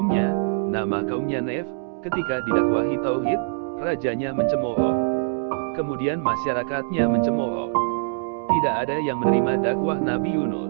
nama kaumnya Nef. Ketika didakwahi tauhid, rajanya mencemooh. Kemudian masyarakatnya mencemooh. Tidak ada yang menerima dakwah Nabi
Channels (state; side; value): silent; left; digital silence